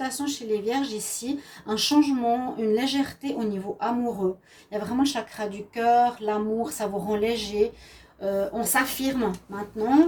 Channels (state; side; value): identical; both; correlation 1.00